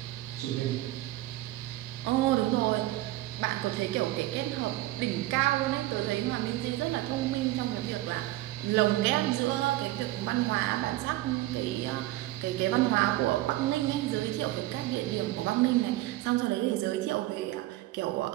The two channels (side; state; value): left; quieter; 16.8 dB